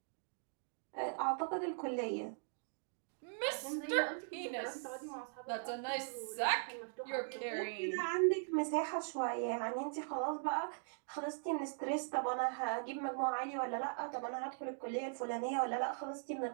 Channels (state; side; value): silent; left; digital silence